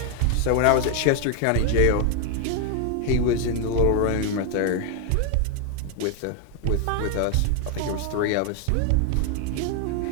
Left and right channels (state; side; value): different; both; correlation 0.00